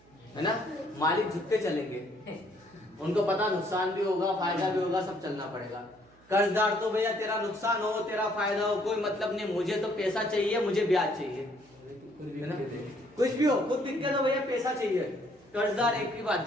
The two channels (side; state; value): right; noise; hum, 29 dB below the sound